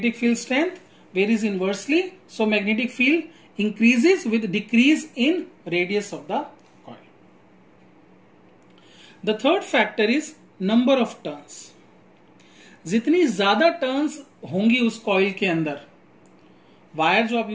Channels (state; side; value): identical; both; correlation 1.00